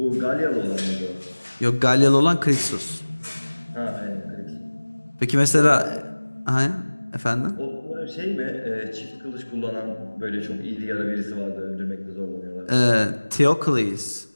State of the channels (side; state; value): both; inverted; correlation -1.00